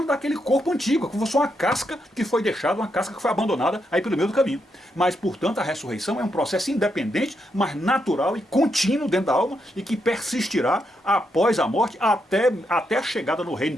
daquele corpo antigo, como se fosse uma casca que foi deixada, uma casca que foi abandonada aí pelo meio do caminho. Mas, portanto, a ressurreição é um processo independente, mas natural e contínuo dentro da alma e que persistirá após a morte até a chegada no reino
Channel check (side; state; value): both; normal; correlation 0.81